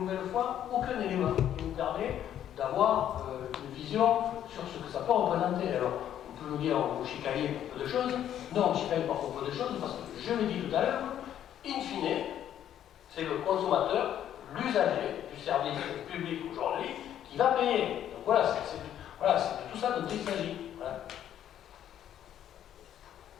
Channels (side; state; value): right; quieter; 10.7 dB